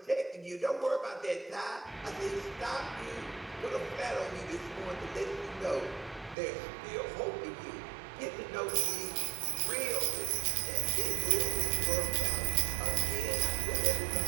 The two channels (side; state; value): left; drops out; at 6.4 s